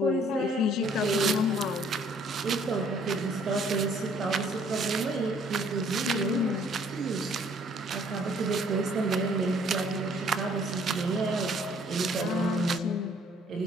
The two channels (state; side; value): normal; both; correlation 0.61